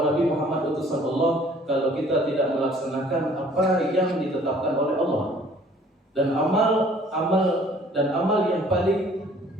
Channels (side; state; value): both; normal; correlation 0.55